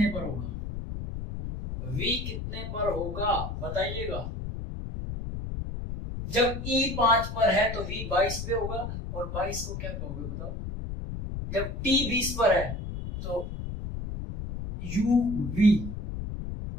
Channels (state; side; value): noise; left; rumble, 6 dB below the sound